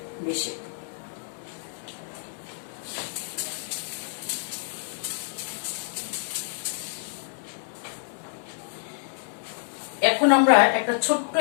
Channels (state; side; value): silent; right; digital silence